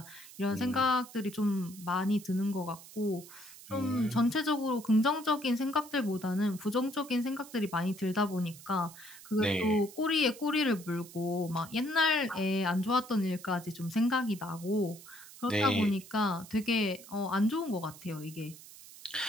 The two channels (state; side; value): noise; right; hiss, 18 dB below the sound